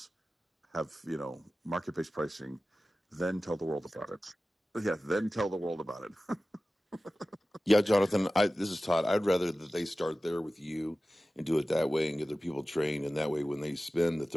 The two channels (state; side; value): normal; both; correlation 0.96